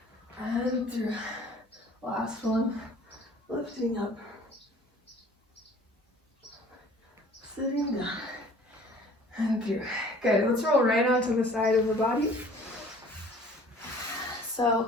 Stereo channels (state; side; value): normal; both; correlation 0.50